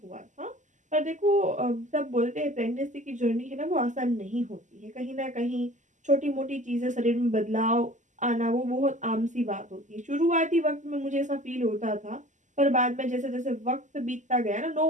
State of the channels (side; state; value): left; late; 0.36 ms